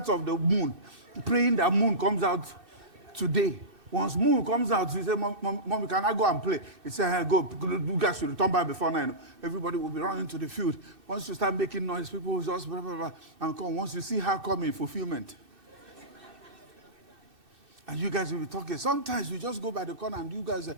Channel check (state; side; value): late; left; 2.6 ms